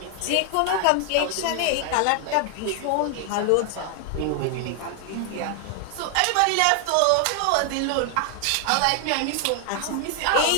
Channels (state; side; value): different; both; correlation 0.00